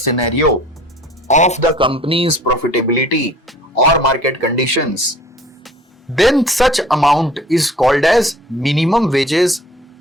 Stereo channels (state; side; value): normal; both; correlation 0.49